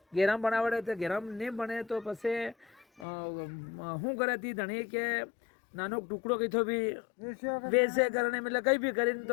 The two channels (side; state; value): right; drops out; at 3.1 s